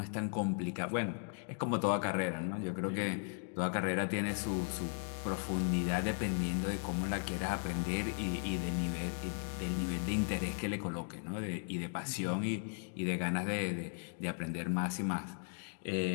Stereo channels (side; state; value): right; silent; 53 dB below the other